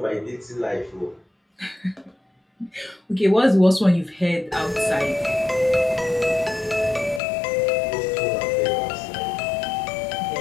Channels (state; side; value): drops out; right; at 7.2 s